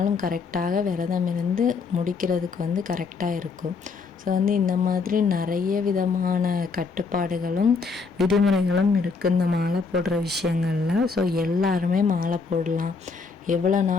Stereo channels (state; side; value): quieter; right; 4.8 dB